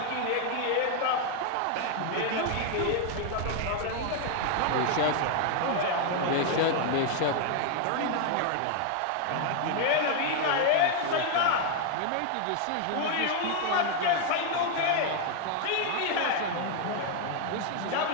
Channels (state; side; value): different; both; correlation 0.00